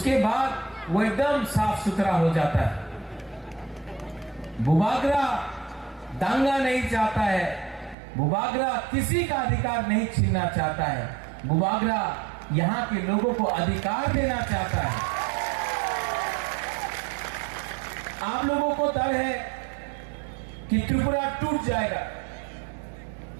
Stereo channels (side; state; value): left; drops out; at 8.0 s